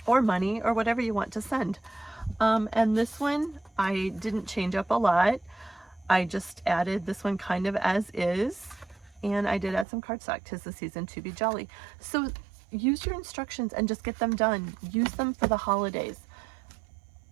or money, or whatever you want to send. And this one, I didn't change up a lot. I just added this one kind of as is, and I did add some cardstock. 'Tis the season to be jolly. So use your instructions and just get them done. Use them for the holidays.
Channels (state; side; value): drops out; left; at 9.9 s